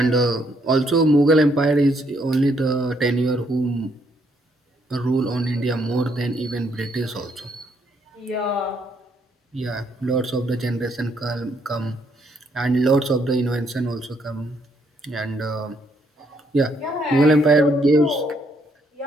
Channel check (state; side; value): normal; both; correlation 0.72